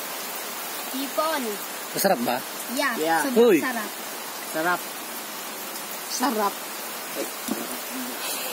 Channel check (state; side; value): identical; both; correlation 1.00